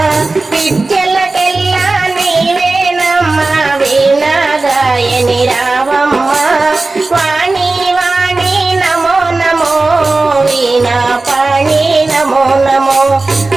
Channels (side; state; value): left; quieter; 3.4 dB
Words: విద్యలకెల్లా నీవేనమ్మా వీణా గాయని రావమ్మ వాణి వాణి నమో నమో వీణా పాణి నమో నమో